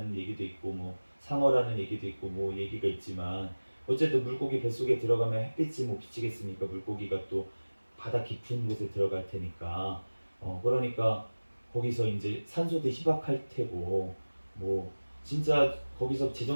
얘기도 있고 뭐 상어라는 얘기도 있고 뭐 얘기가 있지만 어쨌든 물고기 뱃속에 들어가면 햇빛이 뭐 비치겠습니까? 물고기가 또 바다 깊은 곳에 들어갈 테니까 그러니까 거기서 이제 산소도 희박할 테고 뭐 진짜 거기서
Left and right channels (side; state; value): both; inverted; correlation -1.00